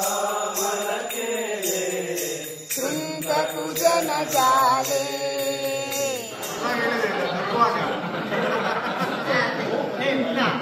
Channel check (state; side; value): identical; both; correlation 1.00